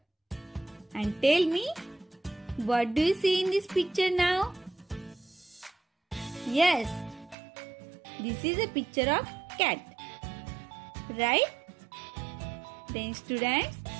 And tell me, what do you see in this picture now? Yes, this is a picture of cat, right? Then students,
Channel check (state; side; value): drops out; left; at 7.4 s